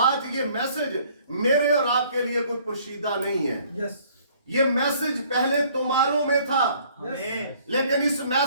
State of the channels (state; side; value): inverted; both; correlation -0.58